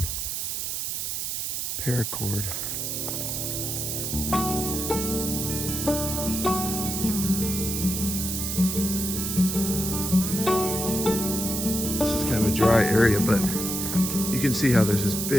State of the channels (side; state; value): right; noise; hiss, 2 dB below the sound